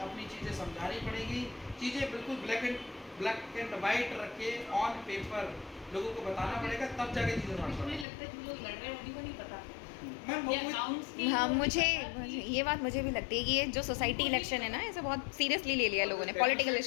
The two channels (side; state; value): right; drops out; at 8.1 s